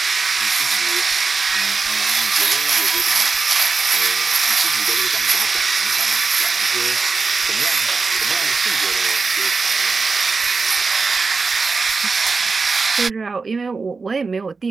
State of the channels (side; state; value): left; quieter; 4.4 dB